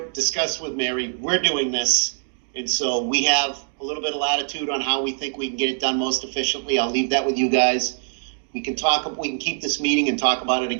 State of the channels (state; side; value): silent; left; 63 dB below the other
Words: discussed with Mary. We're doing this, and so we have a little bit of latitude on how we think we can get it done most efficiently. I'll leave that with you guys. We can keep this meeting and talk about it